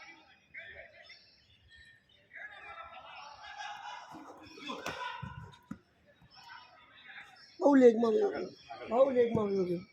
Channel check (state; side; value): identical; both; correlation 1.00